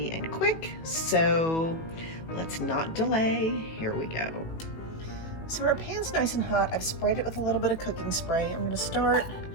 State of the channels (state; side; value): late; right; 18 ms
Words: and quick, so let's not delay. Here we go. So our pan's nice and hot. I've sprayed it with a little bit of cooking spray. I'm gonna start